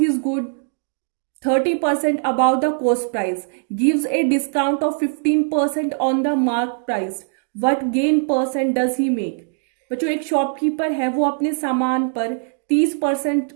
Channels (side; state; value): left; silent; digital silence